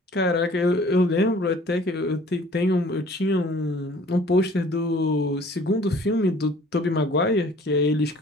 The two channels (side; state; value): both; normal; correlation 0.52